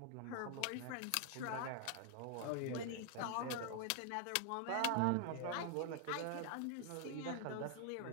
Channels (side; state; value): both; different; correlation 0.00